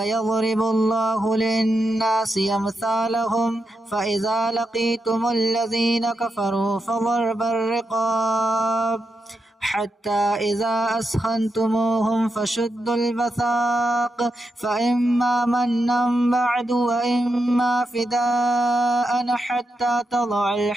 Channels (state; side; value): normal; both; correlation 0.86